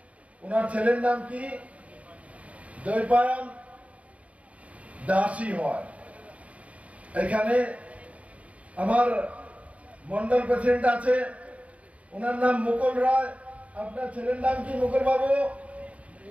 ওনার ছেলের নাম কি দৈপায়ন দাসী হয় এখানে আমার মন্ডল প্রেসিডেন্ট আছে ওনার নাম মুকুল রায় আপনার ছেলের নাম কি মুকুল বাবু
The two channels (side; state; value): left; late; 0.066 ms